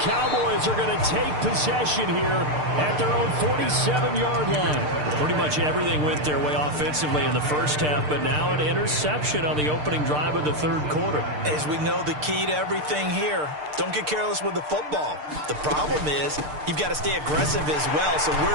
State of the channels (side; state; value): left; late; 6.7 ms